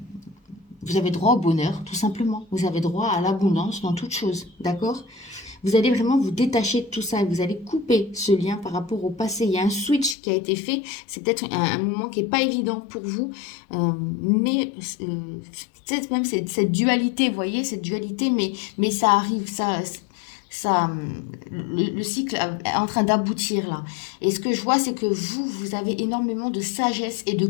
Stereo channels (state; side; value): drops out; right; at 10.2 s